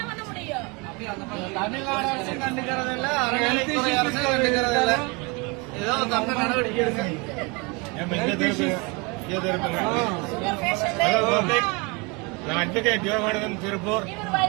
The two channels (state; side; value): quieter; left; 28.5 dB